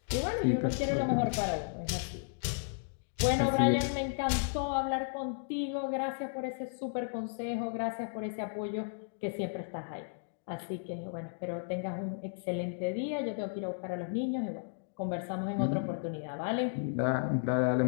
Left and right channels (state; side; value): silent; right; digital silence